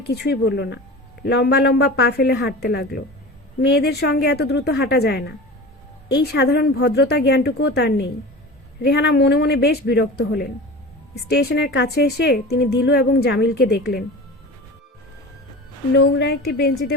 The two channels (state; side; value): normal; both; correlation 0.33